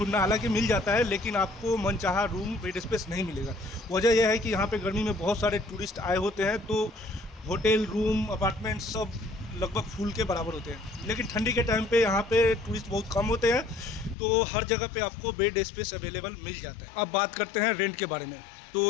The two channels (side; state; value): right; drops out; at 14.2 s